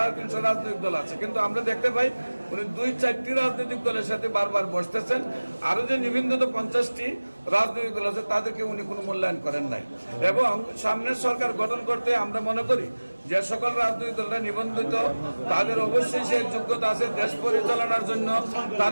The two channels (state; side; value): inverted; both; correlation -1.00